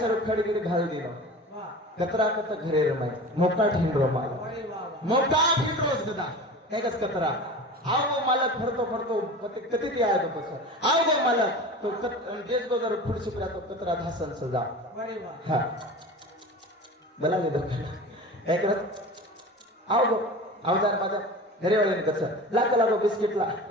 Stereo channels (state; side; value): normal; both; correlation 0.34